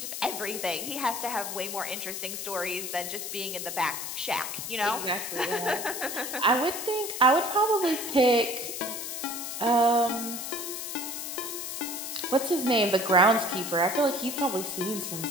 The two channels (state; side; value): noise; left; hiss, 5 dB below the sound